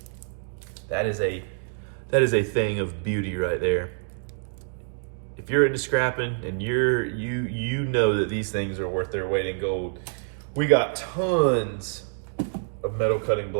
That is a thing of beauty right there. If you're into scrapping and you know that these things are worth their weight in gold. We got tons of metal cutting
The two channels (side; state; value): left; silent; digital silence